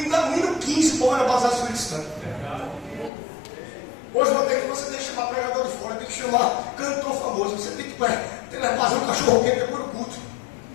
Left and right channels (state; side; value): drops out; right; at 3.1 s